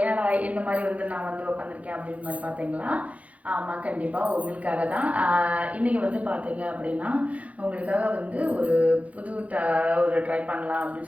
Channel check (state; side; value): late; left; 0.067 ms